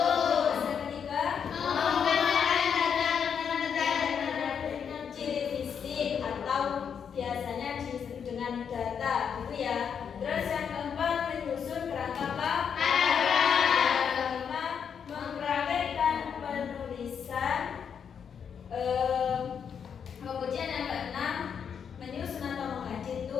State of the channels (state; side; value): quieter; right; 7.3 dB